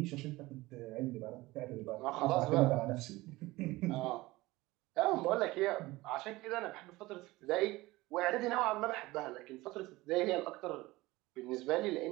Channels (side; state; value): left; quieter; 19.7 dB